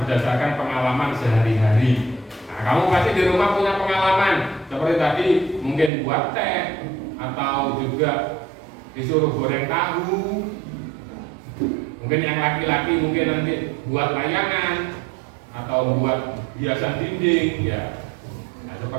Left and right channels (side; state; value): left; drops out; at 5.9 s